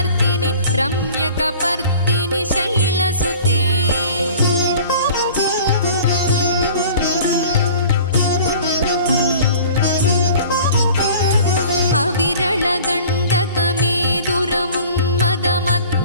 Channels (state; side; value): inverted; both; correlation -0.45